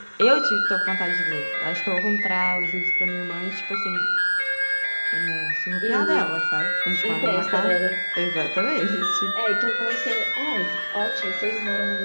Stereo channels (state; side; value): inverted; both; correlation -1.00